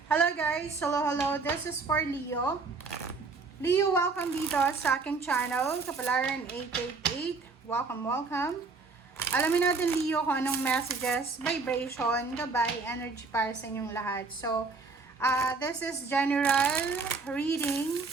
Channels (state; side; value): quieter; left; 4.3 dB